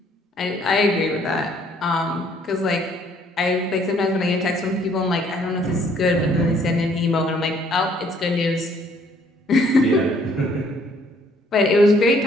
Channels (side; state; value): both; normal; correlation 0.63